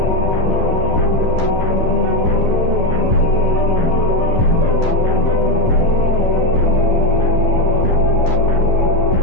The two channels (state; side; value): late; right; 11 ms